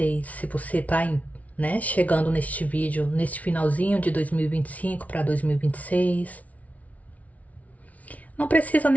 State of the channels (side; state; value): right; late; 0.069 ms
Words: se você tá né, chegando neste vídeo, neste finalzinho de 2025 para 2026. Não precisa